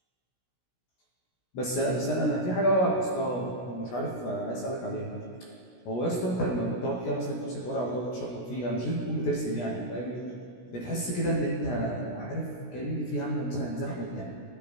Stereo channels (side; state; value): right; late; 16 ms